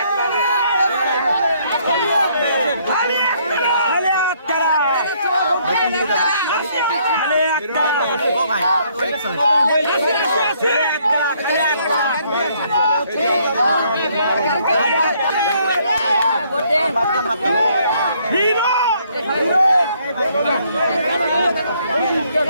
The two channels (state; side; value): inverted; both; correlation -0.67